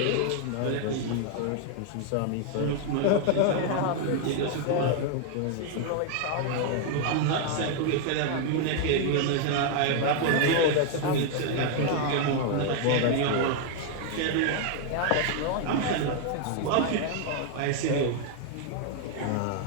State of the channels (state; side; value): different; both; correlation 0.00